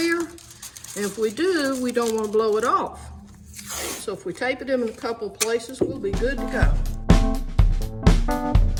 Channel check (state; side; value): identical; both; correlation 1.00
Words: And if we do, we don't want to blow it off. So if we tape it in a couple places, we'll be good to go.